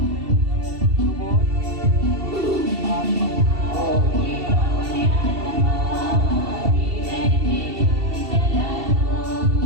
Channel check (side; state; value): left; late; 2.7 ms